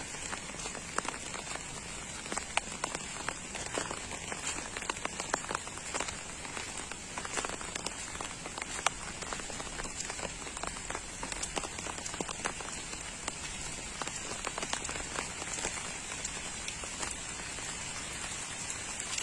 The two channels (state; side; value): identical; both; correlation 1.00